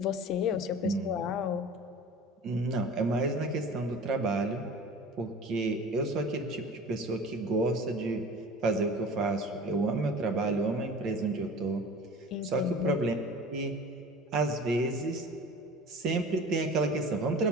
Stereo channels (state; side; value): normal; both; correlation 0.40